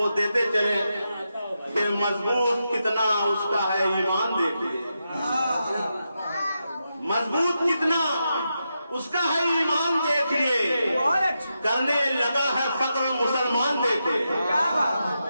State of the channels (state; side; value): inverted; both; correlation -0.86